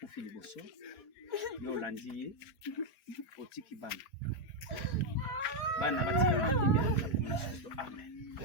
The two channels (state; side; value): late; right; 4.6 ms